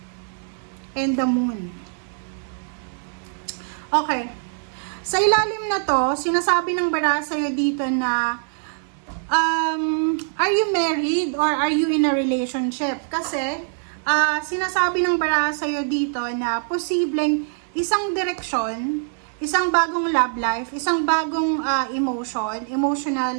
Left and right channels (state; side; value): silent; left; digital silence